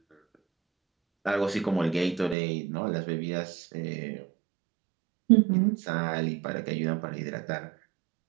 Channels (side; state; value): left; drops out; at 2.4 s